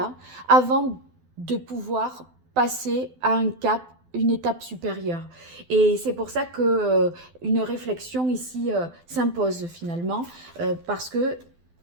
avant de pouvoir passer à un cap, une étape supérieure. Et c'est pour ça que une réflexion ici s'impose finalement, parce que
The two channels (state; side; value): late; left; 12 ms